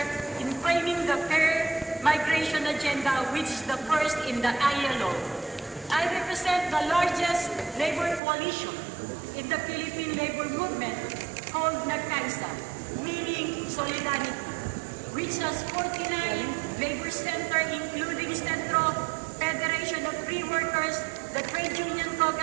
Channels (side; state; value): left; drops out; at 8.2 s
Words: in framing the fair migration agenda, which is the first in the ILO. I represent the largest labor coalition in the Philippine labor movement called NAGCAISA, meaning Solidarity, which has 49 labor centers including Centro, Federation of Free Workers, the Trade Union